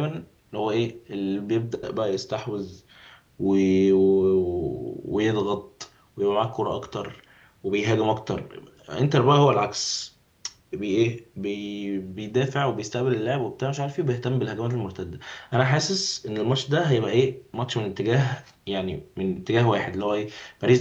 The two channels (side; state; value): both; identical; correlation 1.00